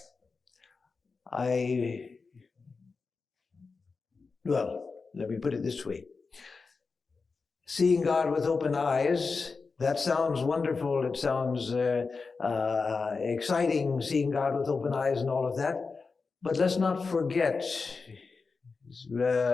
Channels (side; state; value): right; quieter; 4.5 dB